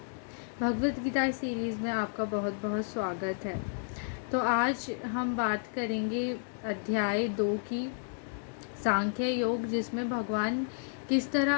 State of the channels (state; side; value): silent; right; digital silence